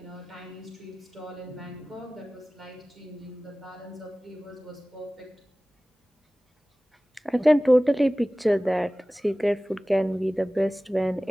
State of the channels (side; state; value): both; normal; correlation 0.98